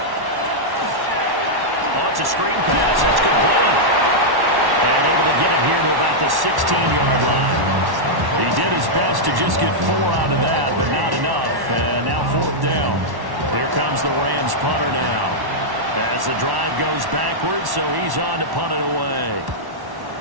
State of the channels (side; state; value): left; late; 1.1 ms